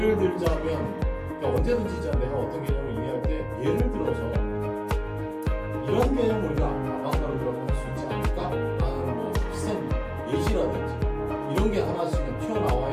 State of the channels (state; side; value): identical; both; correlation 1.00